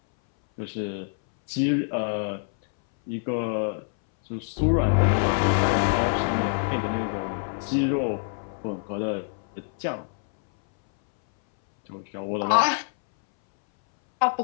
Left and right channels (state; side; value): silent; right; 60 dB below the other